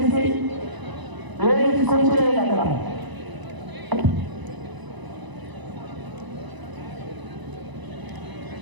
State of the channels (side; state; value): left; late; 1.0 ms